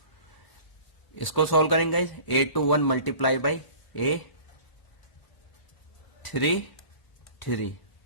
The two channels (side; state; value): right; late; 1.0 ms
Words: इसको सॉल्व करेंगे guys, A21 multiply by A33